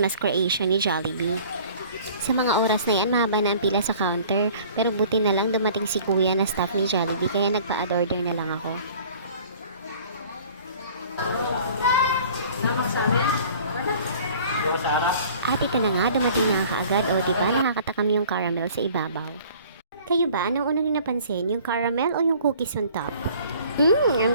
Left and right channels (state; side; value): inverted; both; correlation -0.50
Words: creation ni Jollibee. Sa mga oras na yan, mahaba na ang pila sa counter. Pero buti na lang dumating si kuya na staff ni Jollibee, kaya nagpa-order na lang ako. At ito na nga, dumating na kaagad. O diba, nakakatakam yung caramel sa ibabaw. Kayo ba, anong unang napansin? Yung caramel o yung cookies on top?